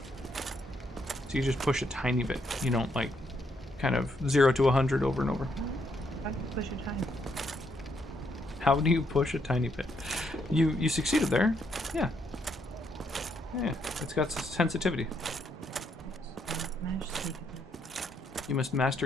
So you just push a tiny bit. You don't like kind of 0 to 100 over and over. How do you push a tiny? How do you push a tiny bit? You succeeded there. Yeah. Yeah, it's got sensitivity. You must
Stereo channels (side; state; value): both; normal; correlation 0.75